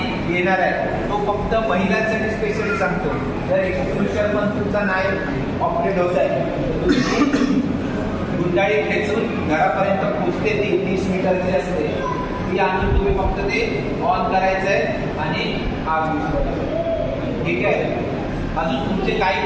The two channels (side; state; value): both; identical; correlation 1.00